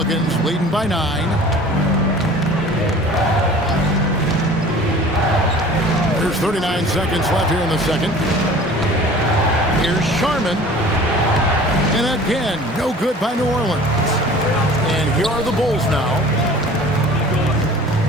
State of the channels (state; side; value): normal; both; correlation 0.45